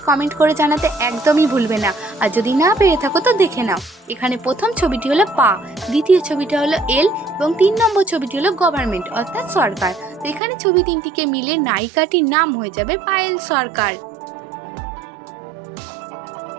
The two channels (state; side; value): drops out; left; at 10.4 s